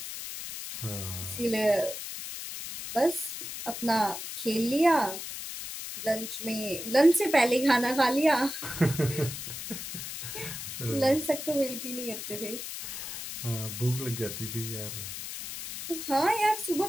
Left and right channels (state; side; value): noise; left; hiss, 8 dB below the sound